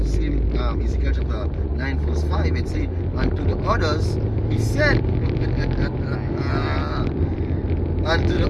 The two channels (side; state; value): both; identical; correlation 1.00